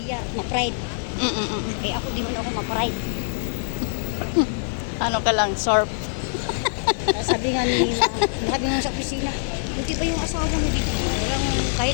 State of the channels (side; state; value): right; silent; digital silence